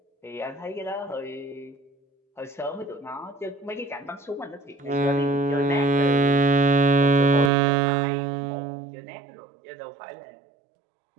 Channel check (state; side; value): drops out; left; at 7.5 s